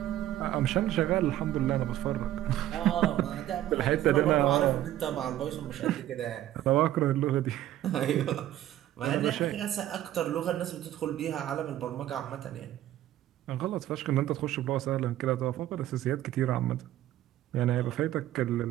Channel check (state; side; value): quieter; left; 13.3 dB